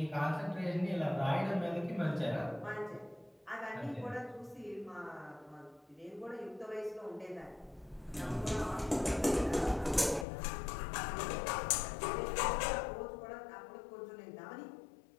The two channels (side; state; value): right; drops out; at 10.2 s